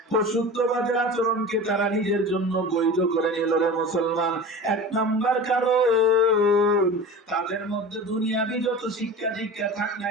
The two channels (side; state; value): both; normal; correlation 0.34